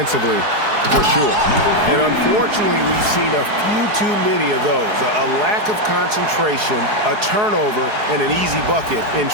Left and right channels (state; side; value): late; left; 4.7 ms